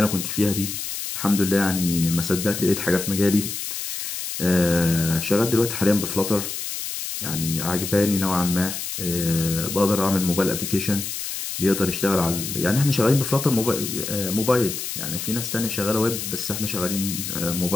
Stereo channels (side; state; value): left; noise; hiss, 5 dB below the sound